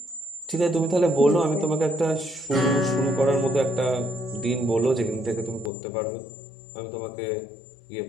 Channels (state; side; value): drops out; right; at 5.7 s